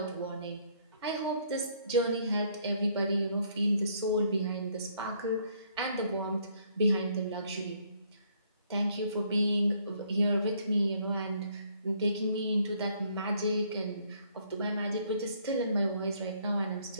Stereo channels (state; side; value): inverted; both; correlation -0.66